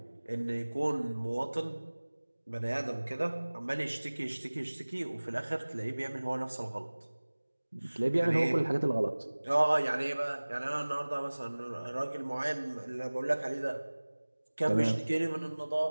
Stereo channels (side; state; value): both; inverted; correlation -1.00